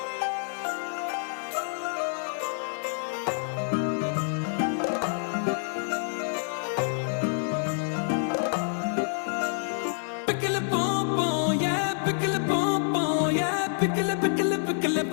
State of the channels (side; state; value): right; silent; digital silence